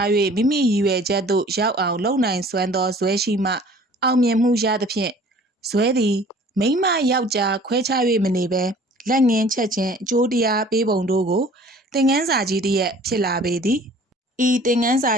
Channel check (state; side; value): normal; both; correlation 0.50